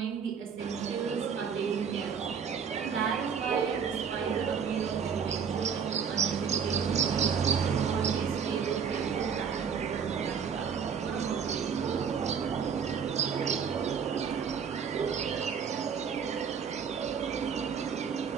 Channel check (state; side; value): quieter; left; 6.8 dB